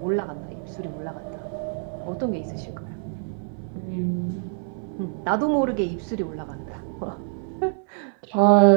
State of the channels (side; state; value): left; silent; 61 dB below the other